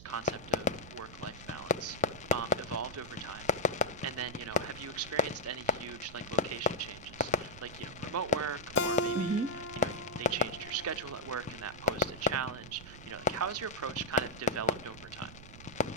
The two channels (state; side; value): noise; right; rumble, 16 dB below the sound